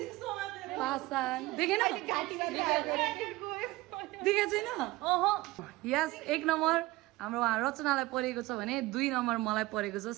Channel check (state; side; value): quieter; left; 19.9 dB